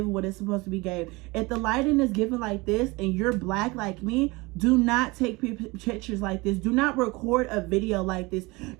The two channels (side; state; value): left; quieter; 23.8 dB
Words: what it's supposed to be gave. If the lighting is given like this and you're black like me, do not take pictures like this. Do not record a video like this.